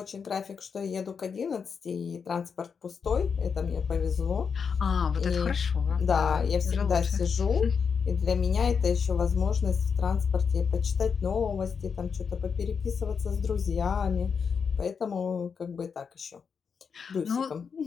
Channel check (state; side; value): quieter; right; 6.1 dB